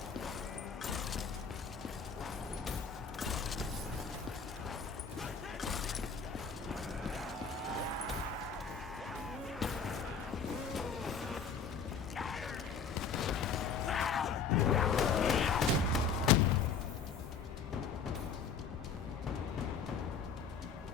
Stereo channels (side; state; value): right; quieter; 5.7 dB